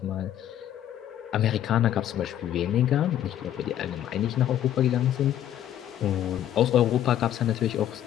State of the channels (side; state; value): right; quieter; 11.3 dB